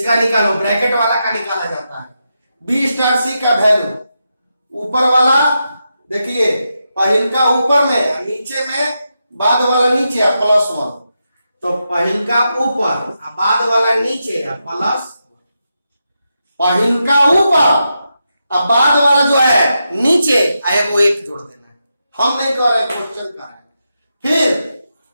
निकालो, ब्रैकेट वाला का निकाला जाता है। बी स्टार सी का वैल्यू, ऊपर वाला देखिए पहिल का ऊपर में, नीचे में बाद वाला नीचे है +1, तो पहिल का ऊपर बाद वाला नीचे है प्लस, पहिल का ऊपर अब बाद वाला जो है नीचे आएगा वो 1 जोड़ देना है। हम नहीं कर रहे, क्वेश्चन कर रहे हैं।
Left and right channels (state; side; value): inverted; both; correlation -0.86